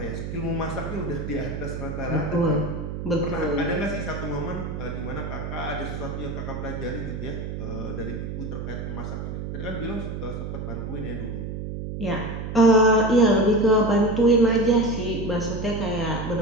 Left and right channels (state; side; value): noise; right; hum, 6 dB below the sound